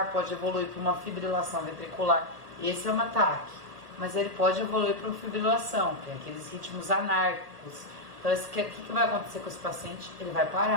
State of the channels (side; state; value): left; late; 1.8 ms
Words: pode evoluir para uma fibrilação ventricular. Esse é um ataque, mas ele pode evoluir para uma fibrilação, que é aqueles ritmos anárquicos. Então, o que vai acontecer com esse paciente? Ele vai